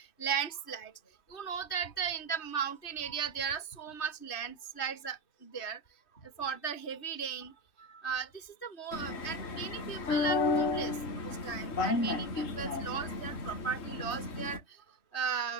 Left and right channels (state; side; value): late; right; 3.2 ms